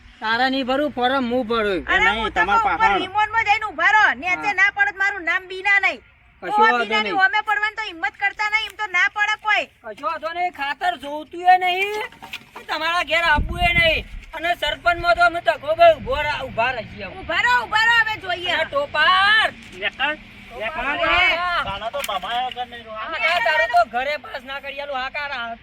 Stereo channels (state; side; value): identical; both; correlation 1.00